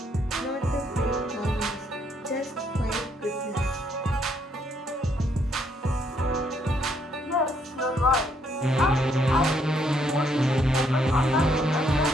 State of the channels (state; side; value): normal; both; correlation 0.71